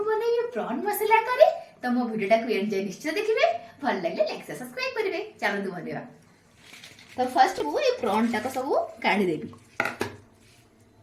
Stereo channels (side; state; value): both; identical; correlation 1.00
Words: बनेबी प्रॉन मसला करी। तो मो वीडियो टाको एंजॉय निश्चय देखिबे, भल लागले लाइक से सब्सक्राइब करिवे। चलो बनेबा। तो फर्स्ट मु ए प्रॉन टाको सब काढी देबी।